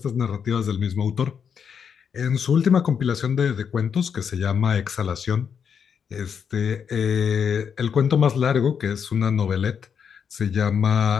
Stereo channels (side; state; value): right; quieter; 7.2 dB